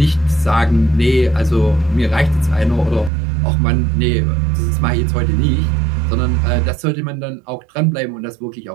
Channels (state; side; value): drops out; left; at 3.1 s